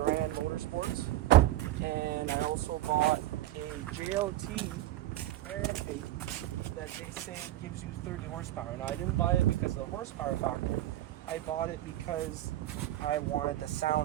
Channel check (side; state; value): left; quieter; 15.0 dB